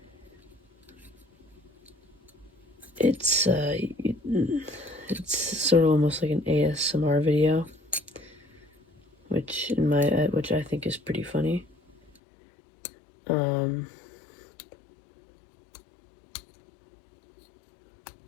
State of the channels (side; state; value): right; drops out; at 12.1 s